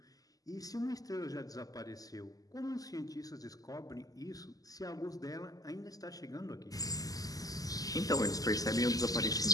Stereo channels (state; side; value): late; right; 0.17 ms